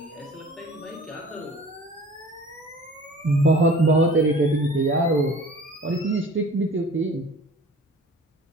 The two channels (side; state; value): both; normal; correlation 0.46